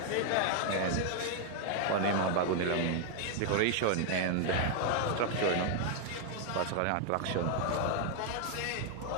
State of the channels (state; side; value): different; both; correlation 0.00